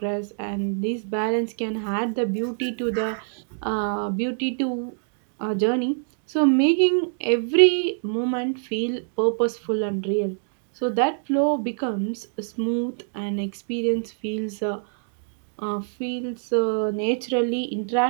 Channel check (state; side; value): silent; left; digital silence